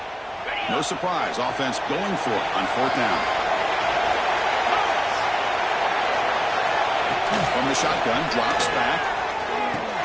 No surprise, offense going for it on fourth down. From the shotgun, drops back.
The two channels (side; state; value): both; identical; correlation 1.00